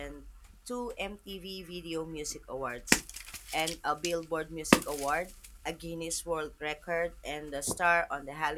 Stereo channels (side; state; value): both; identical; correlation 1.00